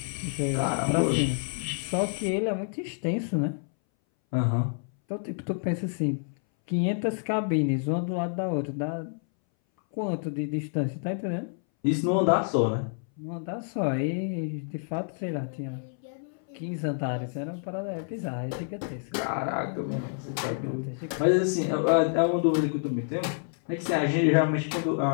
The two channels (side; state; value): right; silent; 59 dB below the other